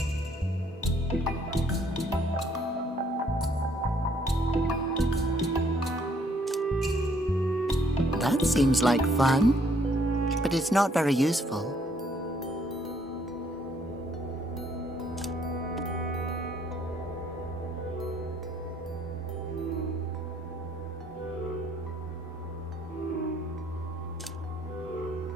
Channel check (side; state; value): both; normal; correlation 0.66